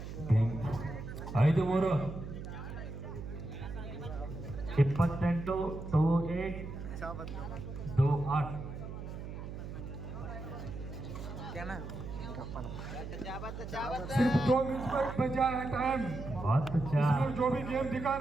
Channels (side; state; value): right; noise; hum, 8 dB below the sound